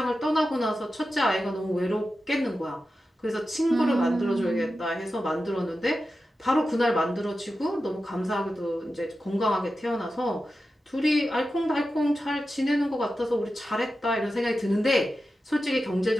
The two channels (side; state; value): both; normal; correlation 0.92